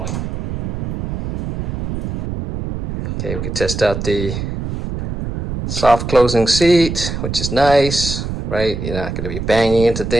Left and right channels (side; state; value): right; noise; rumble, 4 dB below the sound